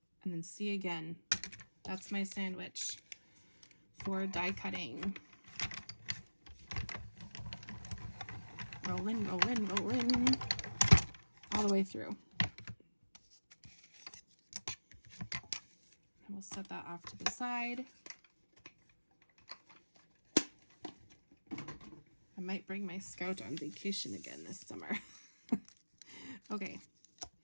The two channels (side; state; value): both; inverted; correlation -1.00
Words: and then C again. That's my sandwich for die cutting. Rolling, rolling, rolling, all the way through. And we'll set that off to the side. I might bring my Scout on vacation again this summer. Okay,